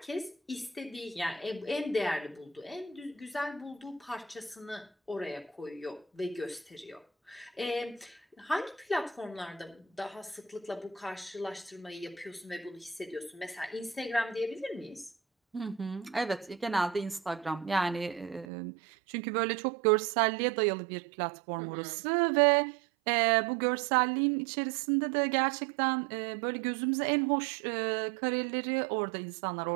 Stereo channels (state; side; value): drops out; left; at 18.4 s